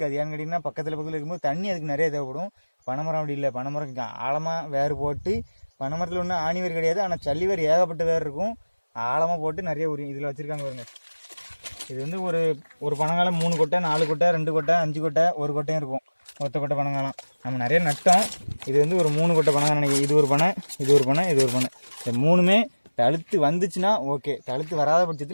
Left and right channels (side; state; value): both; inverted; correlation -1.00